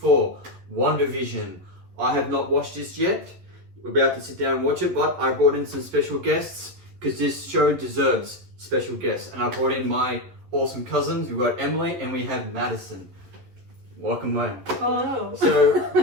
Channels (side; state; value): left; late; 11 ms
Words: WandaVision. I have not watched this yet. We're about to sit down and watch it, but I brought in some special guests because this show deserves special guests. And I brought in my awesome cousins. We've got Emily and we have Madison. Welcome, man. Hello. So